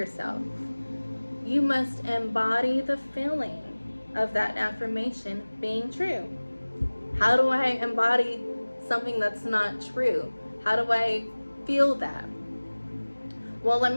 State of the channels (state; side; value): inverted; both; correlation -1.00